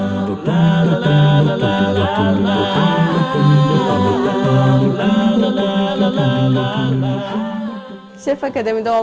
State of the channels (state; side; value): identical; both; correlation 1.00